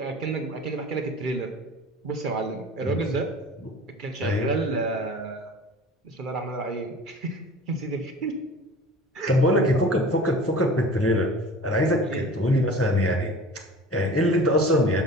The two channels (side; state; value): both; normal; correlation 0.41